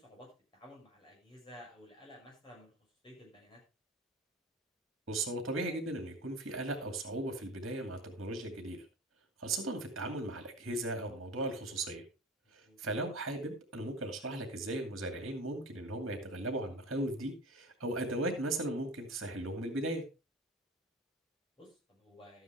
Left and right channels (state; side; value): normal; both; correlation 0.34